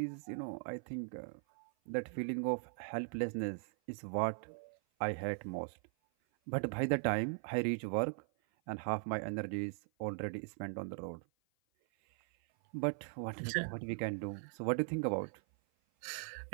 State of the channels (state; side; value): silent; left; 51 dB below the other